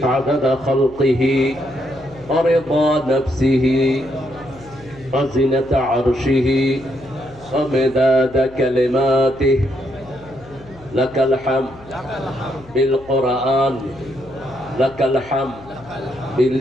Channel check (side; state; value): left; noise; hum, 22 dB below the sound